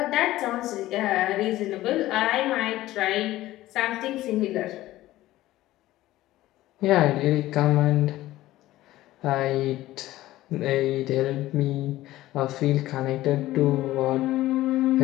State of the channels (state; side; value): quieter; right; 15.9 dB